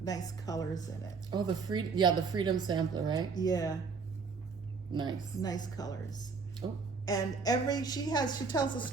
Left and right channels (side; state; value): left; quieter; 5.0 dB